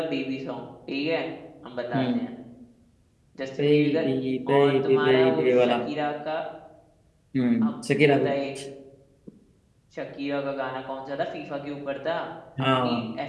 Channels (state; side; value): identical; both; correlation 1.00